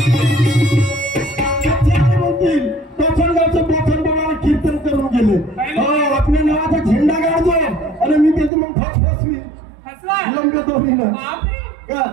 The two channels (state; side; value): drops out; left; at 8.5 s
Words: कीर्तन करून गेले. आपल्या नावाचा झेंडा काढतो आणि मी त्याची मग फसफसवी